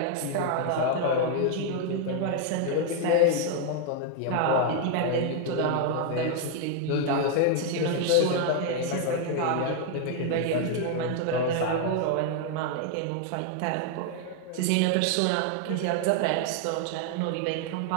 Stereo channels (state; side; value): different; both; correlation 0.00